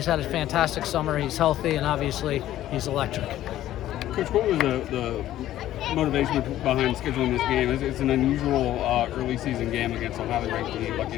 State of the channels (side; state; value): right; quieter; 13.4 dB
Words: had a fantastic summer. He's healthy, and obviously he's electric. Coach, what was the motivation behind scheduling this game? It's an unusual early season game against a highly ranked team like